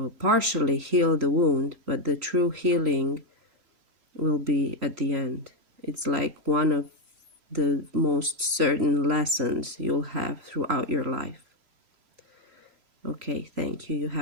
partially heal the wound, but the true healing will be at the end. It's like one of the most certain lessons you'll have throughout your life. Okay, thank you. You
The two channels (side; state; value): left; late; 3.0 ms